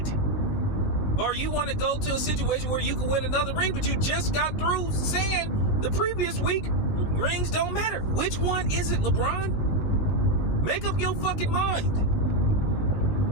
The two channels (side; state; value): right; late; 19 ms